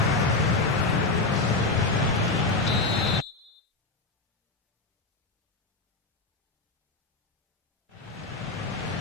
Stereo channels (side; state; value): right; quieter; 3.5 dB